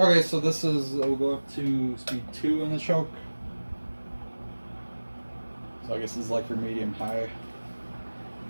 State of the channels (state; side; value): inverted; both; correlation -1.00